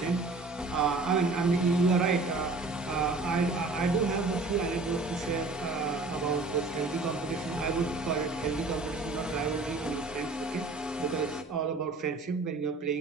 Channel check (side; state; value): left; quieter; 3.5 dB